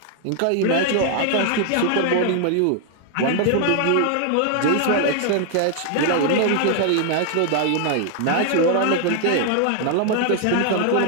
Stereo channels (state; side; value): different; both; correlation 0.00